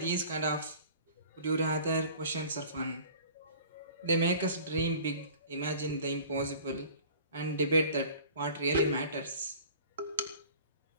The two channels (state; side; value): inverted; both; correlation -0.46